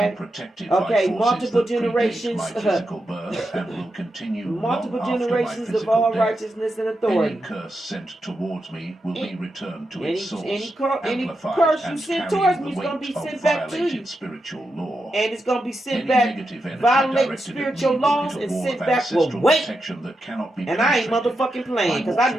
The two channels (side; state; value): both; normal; correlation 0.87